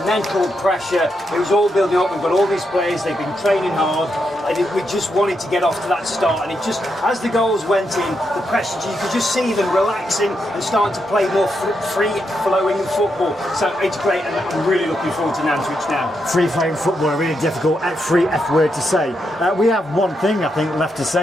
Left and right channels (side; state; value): both; normal; correlation 0.82